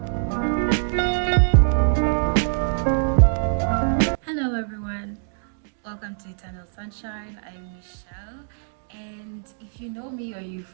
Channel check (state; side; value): silent; left; digital silence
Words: Hello everyone, welcome to Eternal Sunshine. I'm Michelle, and if you know me or you